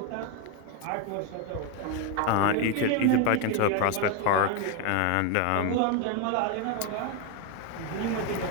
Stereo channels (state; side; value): different; both; correlation 0.02